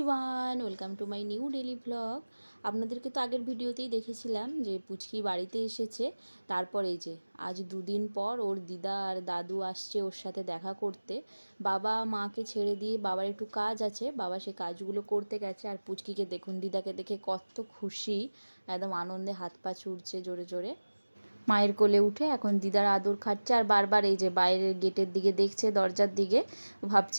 welcome to my new daily vlog. আপনাদেরকে তো আগের ভিডিওতেই দেখেছিলাম যে পুচকি বাড়িতে এসেছে। তারপর এই যে আজ দুদিন পর ওর দিদা আর দাদু আসছে ওর সাথে দেখা করতে। বাবা মাকে ছেড়ে দিয়ে বাবার একটু কাজ আছে, বাবা সে কাজগুলো করতে গেছে। আর পুচকিকে দেখুন, দিদাকে দেখে কত খুশি, একদম আনন্দে হাত পা ছুটছে জোরে জোরে। মায়ের কোলে উঠে এখন দিদার আদর খাচ্ছে আর বারবার এই যে বাইরের গেটের দিকে দেখছে, দরজার দিকে,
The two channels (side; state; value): both; inverted; correlation -1.00